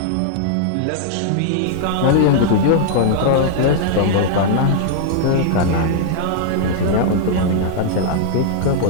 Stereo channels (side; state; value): both; different; correlation -0.01